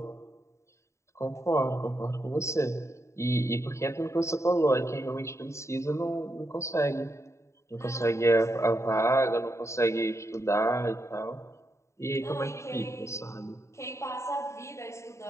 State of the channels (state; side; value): late; right; 0.14 ms